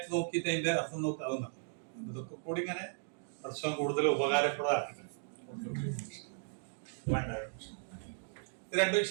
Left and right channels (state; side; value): silent; left; digital silence